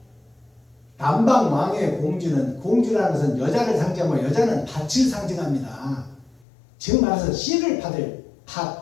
남방 왕의 공주라는 것은 여자를 상징하고 여자는 밭을 상징합니다. 즉 말해서 씨를 받을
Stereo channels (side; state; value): right; drops out; at 6.5 s